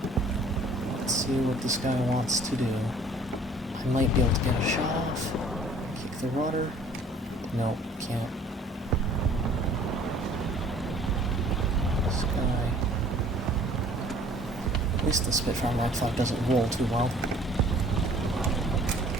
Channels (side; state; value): both; normal; correlation 0.53